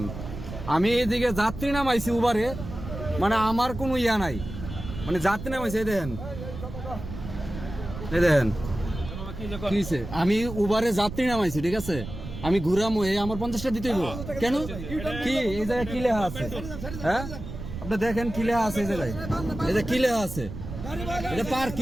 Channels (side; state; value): right; noise; rumble, 9 dB below the sound